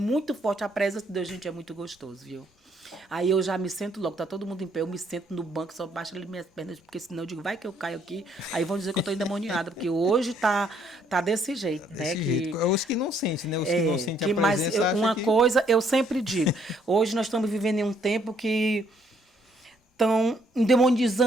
forte, a presença de Deus, gente, é muito gostoso, viu? Aí eu já me sento logo, tá todo mundo em pé, eu me sento no banco, só baixo ali minhas pernas, porque senão eu digo, vai que eu caio aqui, aí vão dizer que eu tô endemoniada, porque hoje tá desse jeito, né? Os que não sentem, né? Os que não sentem a presença. Mas uma coisa eu sempre digo, hoje nós estamos vivendo em um tempo que estão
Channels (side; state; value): both; normal; correlation 0.68